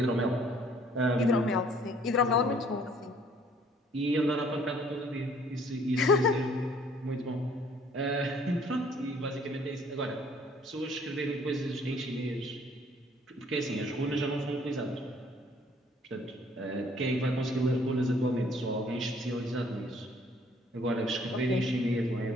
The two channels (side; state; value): both; normal; correlation 0.59